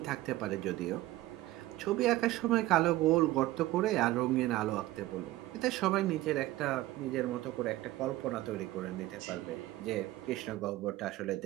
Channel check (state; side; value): quieter; left; 16.9 dB